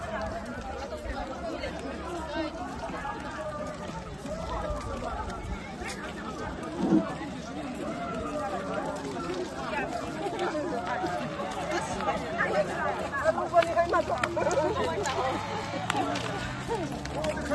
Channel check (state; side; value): identical; both; correlation 1.00